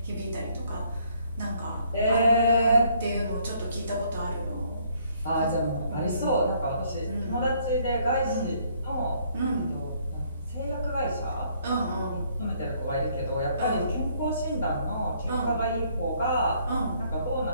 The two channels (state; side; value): inverted; both; correlation -0.66